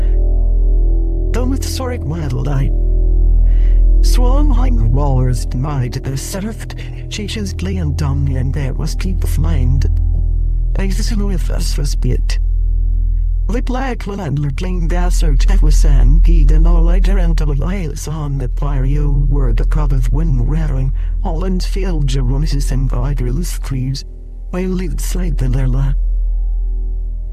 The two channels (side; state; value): both; identical; correlation 1.00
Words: with soric waddle I. Swung hang rollers denied the served, she just lay and dumb and there was keep of mind. Exit with us was bit. The black landler clean desert that was sand, geed and all later into the lights on the barrio were the crowd of wind rattling, all in field Jeronis and viders trees, while lead slide in their lap.